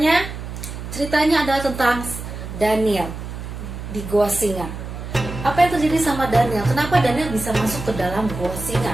Ceritanya adalah tentang Daniel di gua singa. Apa yang terjadi sama Daniel? Kenapa Daniel bisa masuk ke dalam gua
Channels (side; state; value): right; noise; hum, 9 dB below the sound